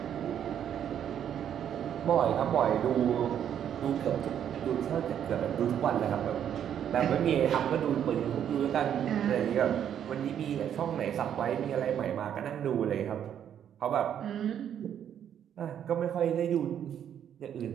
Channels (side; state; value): left; quieter; 9.5 dB